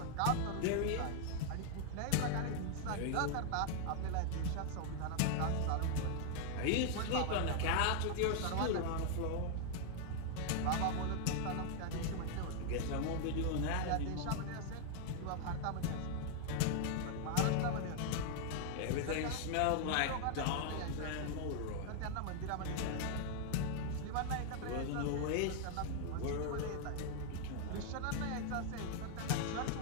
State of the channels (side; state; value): both; different; correlation 0.00